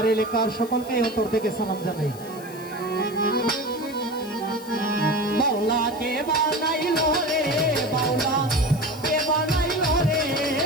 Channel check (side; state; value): left; noise; hiss, 19 dB below the sound